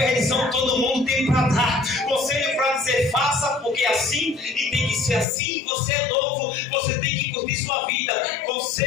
todo mundo tem para dar, conselho para dizer faça porque é assim e tem que ser assim, você é novo, você tem que curtir sua vida.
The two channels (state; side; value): drops out; right; at 5.2 s